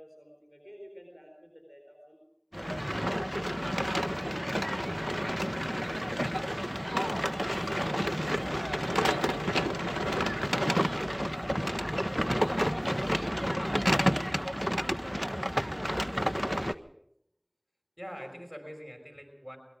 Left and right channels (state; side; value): identical; both; correlation 1.00